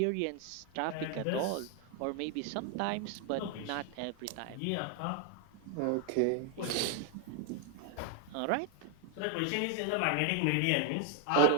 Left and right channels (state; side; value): different; both; correlation 0.01